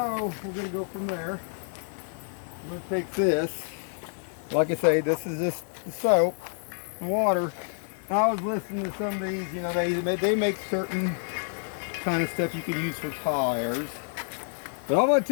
we're going to go from there. I'm going to take this. Like I say, this is just the soap and water. I was listening to some of these. You know, they make certain kind of stuff you can use for tires. But I'm going to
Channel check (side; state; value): right; silent; digital silence